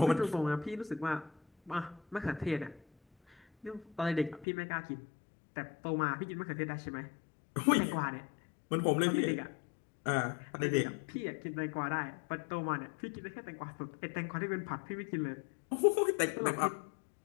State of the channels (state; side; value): drops out; right; at 4.5 s